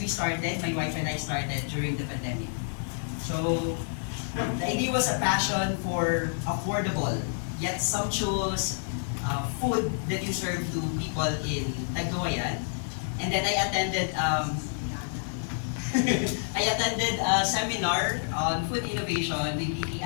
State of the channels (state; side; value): silent; right; digital silence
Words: we started, my wife and I started during the pandemic. So, the idea was a passion for affordable yet sumptuous food that you serve to people in Tagkawayan. And then I attended a seminar on food innovation with